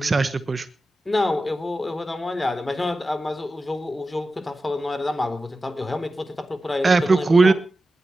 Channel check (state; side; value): normal; both; correlation 0.93